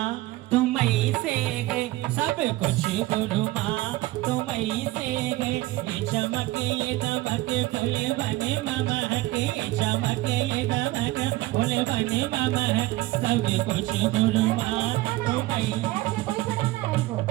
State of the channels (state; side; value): quieter; left; 18.4 dB